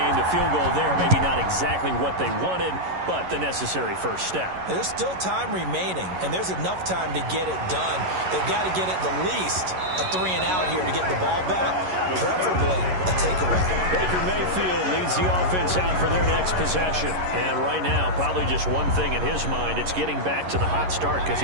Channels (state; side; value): late; left; 11 ms